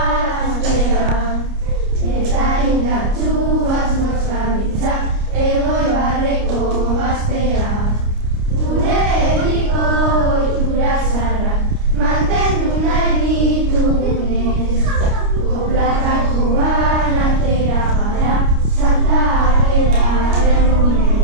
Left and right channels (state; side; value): late; left; 29 ms